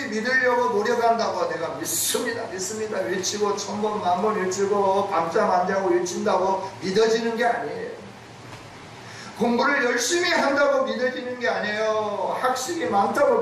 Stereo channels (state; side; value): identical; both; correlation 1.00